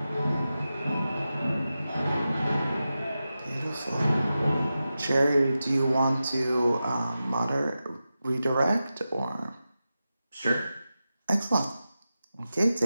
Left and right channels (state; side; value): inverted; both; correlation -0.92